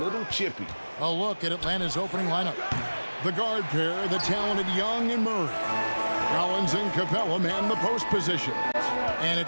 little chippy. A look at Atlanta's opening lineup. The guard pair, the talented Young and Murray. Collins and Capella man the post positions. And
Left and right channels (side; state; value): both; inverted; correlation -1.00